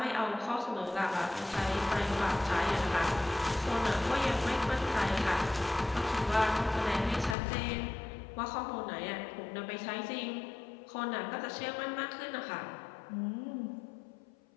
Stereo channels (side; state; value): right; drops out; at 7.4 s